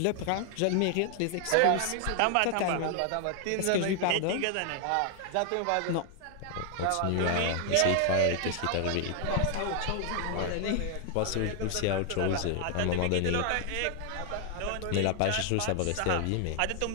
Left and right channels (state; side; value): different; both; correlation 0.00